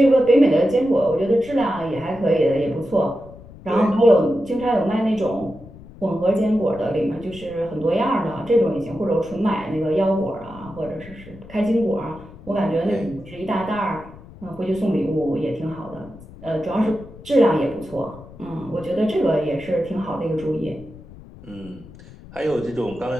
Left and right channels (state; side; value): noise; left; rumble, 19 dB below the sound